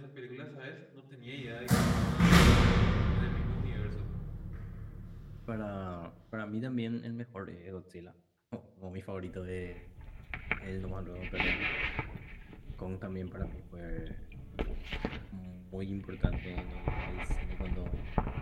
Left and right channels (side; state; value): both; identical; correlation 1.00